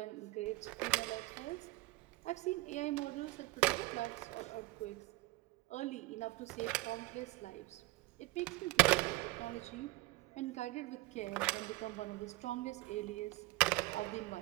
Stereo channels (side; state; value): left; quieter; 20.5 dB